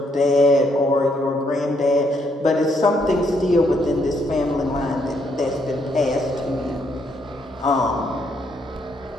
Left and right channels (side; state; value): both; normal; correlation 0.73